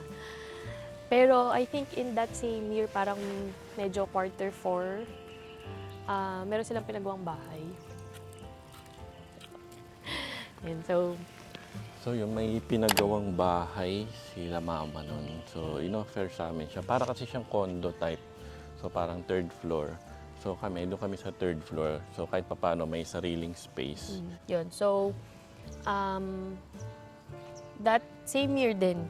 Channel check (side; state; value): both; identical; correlation 1.00